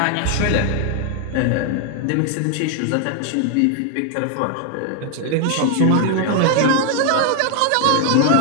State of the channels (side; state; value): both; different; correlation 0.00